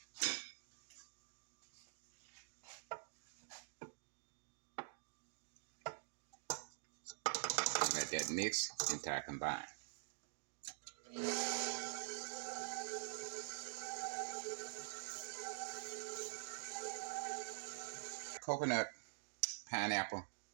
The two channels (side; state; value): left; silent; digital silence